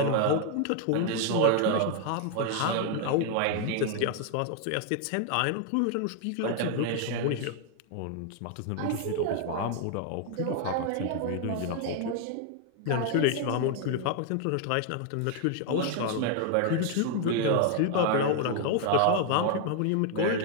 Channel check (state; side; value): different; both; correlation 0.00